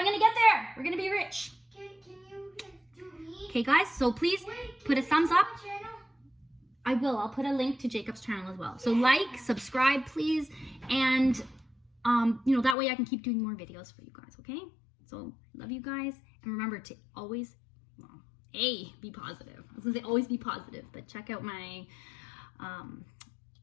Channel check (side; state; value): right; drops out; at 12.8 s